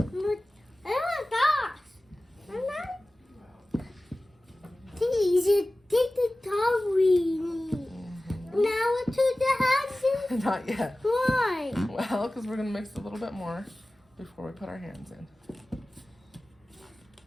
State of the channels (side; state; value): both; normal; correlation 0.97